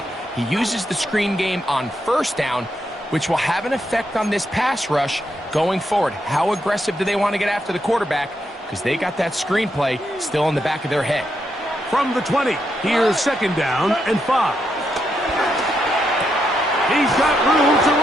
He uses the screen game on first down, which will have an effect on this pass rush going forward. How aggressive do they want to get after the quarterback? Because they got that screenplay still in the back of their head. From the 20, here's second down and 5. He's got room to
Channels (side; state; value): both; normal; correlation 0.81